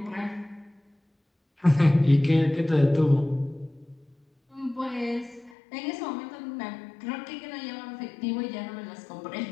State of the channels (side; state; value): right; drops out; at 5.6 s